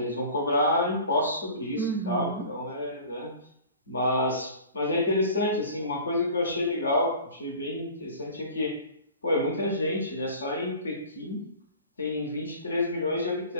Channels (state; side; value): inverted; both; correlation -0.44